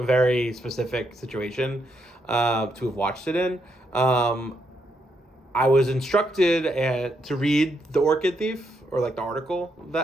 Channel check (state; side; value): normal; both; correlation 0.78